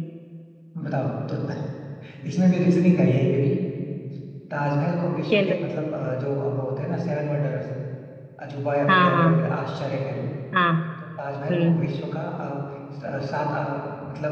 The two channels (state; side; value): identical; both; correlation 1.00